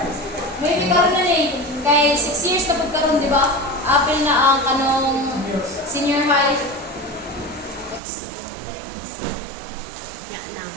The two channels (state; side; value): drops out; left; at 8.0 s